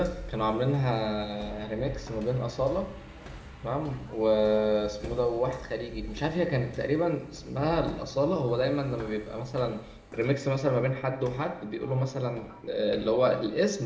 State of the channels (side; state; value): both; identical; correlation 1.00